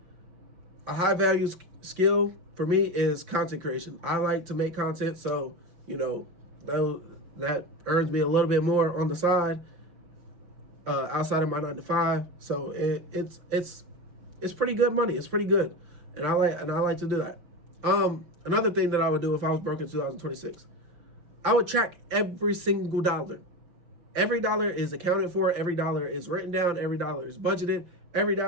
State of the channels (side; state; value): left; late; 5.8 ms